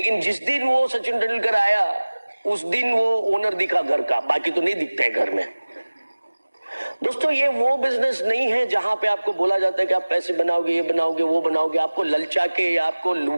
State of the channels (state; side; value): inverted; both; correlation -1.00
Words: जिस दिन वो सचिन तेंदुलकर आया उस दिन वो ओनर दिखा घर का, बाकी तो नहीं दिखता है घर में। दोस्तों, ये वो बिजनेस नहीं है जहां पे आपको बोला जाता है कि आप पैसे बनाओगे, ये बनाओगे, वो बनाओगे। आपको ललचा के या आपको